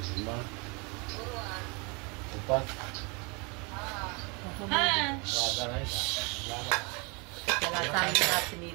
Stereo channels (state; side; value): quieter; left; 30.6 dB